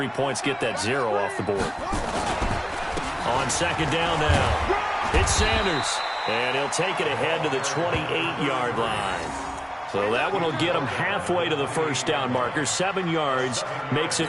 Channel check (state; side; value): identical; both; correlation 1.00